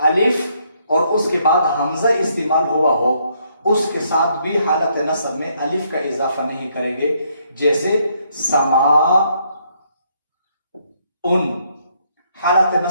और उसके बाद हमजा इस्तेमाल हुआ हो उसके साथ भी हालत नसब में अलिफ का इजाफा नहीं करेंगे। जैसे समा उन, हालत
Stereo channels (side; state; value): both; inverted; correlation -0.71